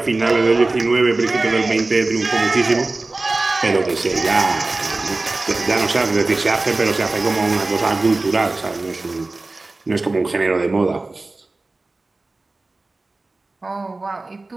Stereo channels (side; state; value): left; quieter; 3.2 dB